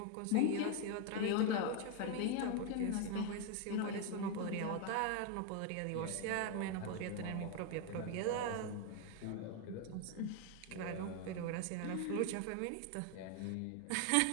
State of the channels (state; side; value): different; both; correlation 0.01